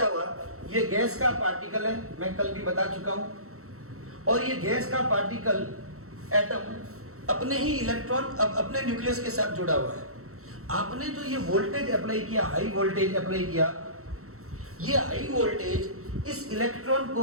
हुआ? ये गैस का पार्टिकल है, मैं कल भी बता चुका हूं, और ये गैस का पार्टिकल एटम अपने ही इलेक्ट्रॉन अपने न्यूक्लियस के साथ जुड़ा हुआ है। आपने जो ये वोल्टेज अप्लाई किया, हाई वोल्टेज अप्लाई किया, ये हाई वोल्टेज इस इलेक्ट्रॉन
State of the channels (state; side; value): late; left; 0.64 ms